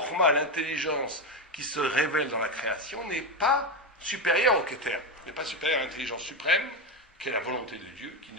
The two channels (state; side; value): normal; both; correlation 0.13